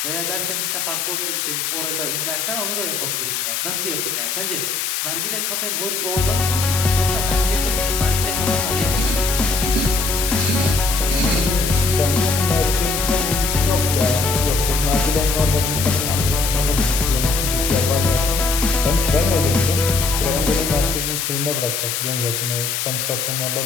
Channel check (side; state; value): left; noise; hiss, 1 dB below the sound